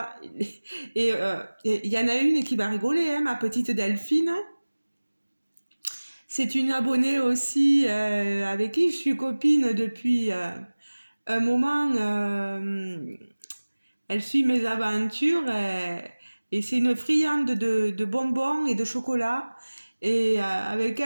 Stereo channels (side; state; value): both; inverted; correlation -1.00